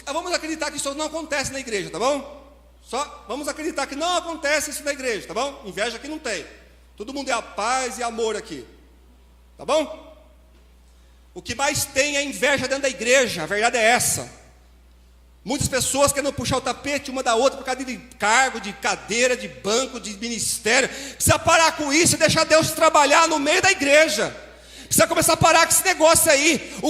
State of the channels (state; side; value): identical; both; correlation 1.00